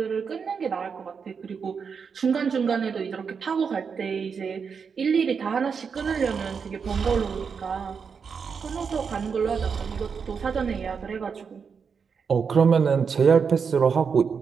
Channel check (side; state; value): left; quieter; 6.0 dB